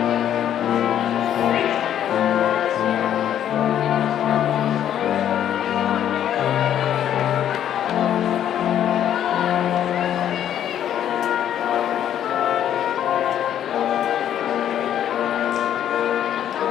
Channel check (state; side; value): quieter; right; 10.4 dB